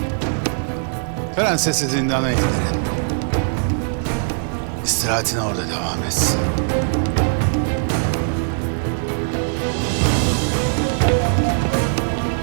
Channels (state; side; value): silent; left; digital silence